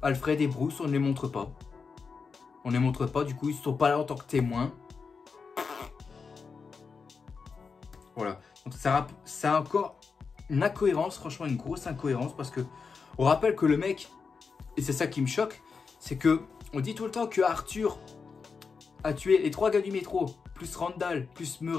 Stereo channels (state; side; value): quieter; right; 5.2 dB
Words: Alfred et Bruce, on ne les montre pas. On ne les montre pas. Du coup, ils ne sont pas là en tant que témoins. Voilà. Donc, c'est encore une incohérence. Franchement, une grosse incohérence. Parce que on rappelle que le mec, et c'est ça qui me choque, c'est que on dit tout le temps que Arthur a tué les 3 gars du métro, plus Randall, plus